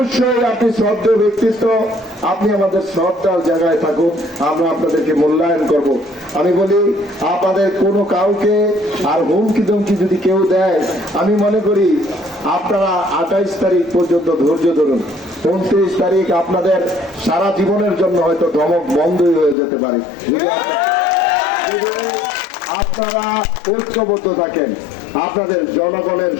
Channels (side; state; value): right; drops out; at 19.6 s